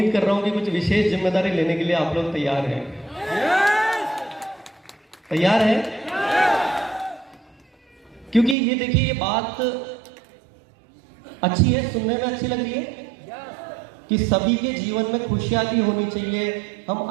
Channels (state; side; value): drops out; left; at 8.6 s